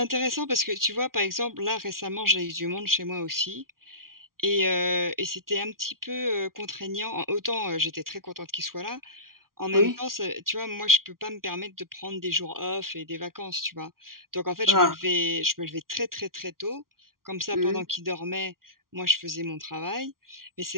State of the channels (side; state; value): left; late; 0.92 ms